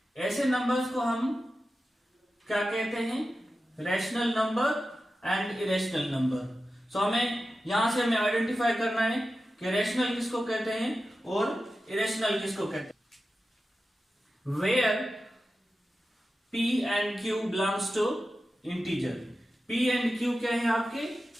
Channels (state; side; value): normal; both; correlation 0.93